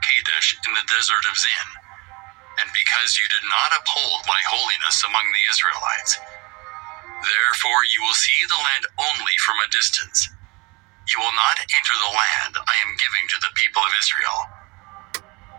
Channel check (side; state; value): left; quieter; 26.8 dB